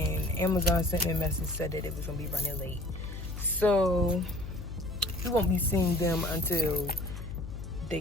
Amazon sent me a message, said that it was gonna be running late. So you won't be seeing them until they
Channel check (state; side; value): noise; left; hum, 9 dB below the sound